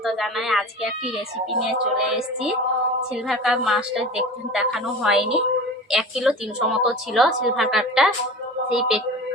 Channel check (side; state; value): both; normal; correlation 0.35